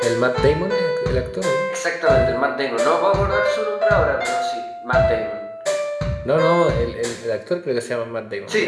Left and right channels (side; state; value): both; identical; correlation 1.00